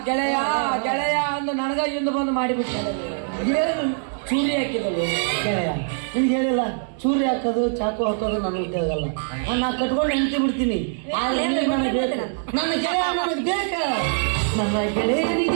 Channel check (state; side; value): silent; left; 63 dB below the other